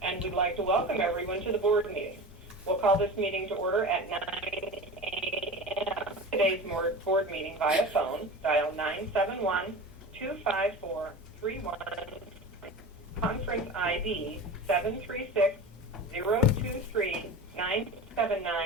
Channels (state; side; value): normal; both; correlation 0.31